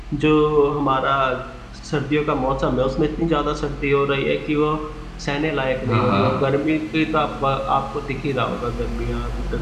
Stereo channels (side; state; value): both; identical; correlation 1.00